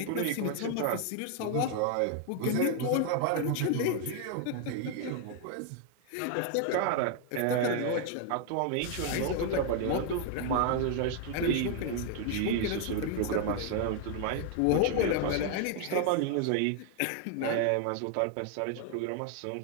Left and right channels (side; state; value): both; different; correlation 0.00